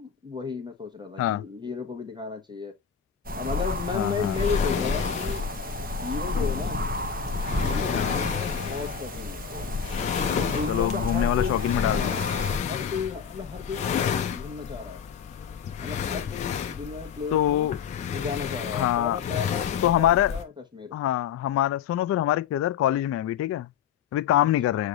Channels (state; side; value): quieter; right; 7.6 dB